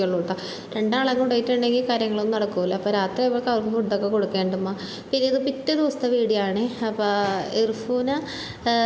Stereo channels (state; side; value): identical; both; correlation 1.00